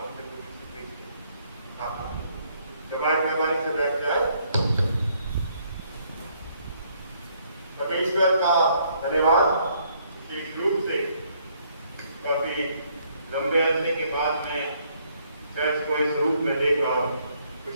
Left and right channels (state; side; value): inverted; both; correlation -0.68